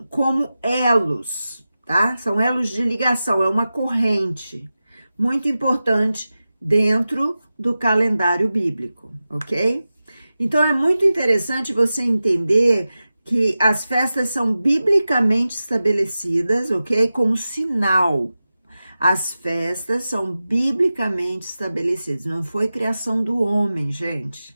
como elos, tá? São elos de ligação, é uma corrente muito importante dentro do calendário bíblico, ok? Então é muito interessante você entender que as festas são biblicamente estabelecidas, ok? Como sinal. As festas são biblicamente estabelecidas. Não foi criação do homem,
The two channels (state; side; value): inverted; both; correlation -0.94